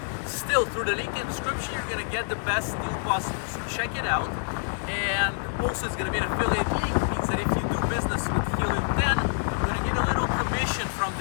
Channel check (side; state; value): right; silent; digital silence